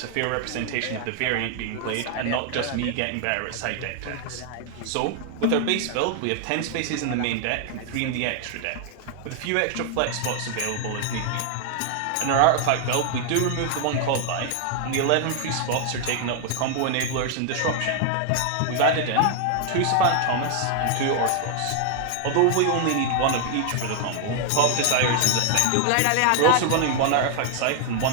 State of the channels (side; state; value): both; different; correlation 0.00